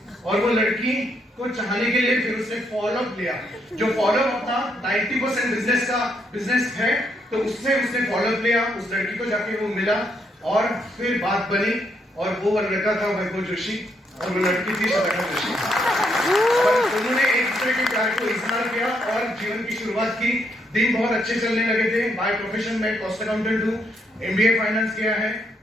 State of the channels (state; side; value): normal; both; correlation 0.75